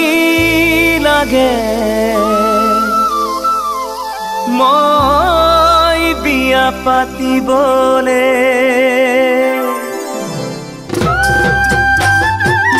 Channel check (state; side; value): identical; both; correlation 1.00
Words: লাগে মই বিয়া পাতিবলে